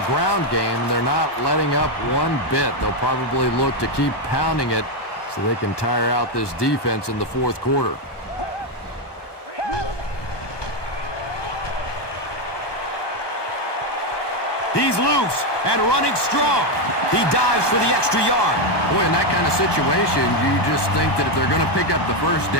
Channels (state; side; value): late; right; 1.2 ms